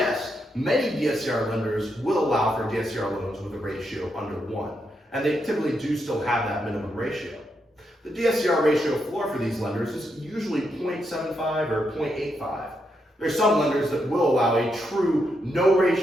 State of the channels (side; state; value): both; normal; correlation 0.81